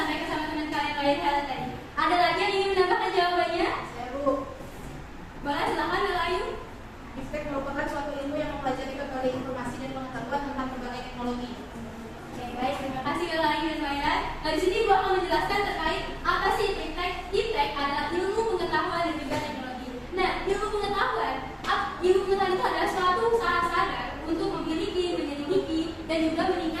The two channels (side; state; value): both; identical; correlation 1.00